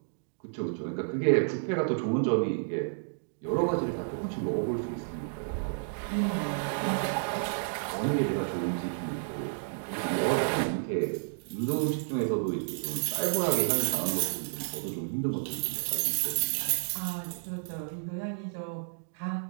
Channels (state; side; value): silent; left; digital silence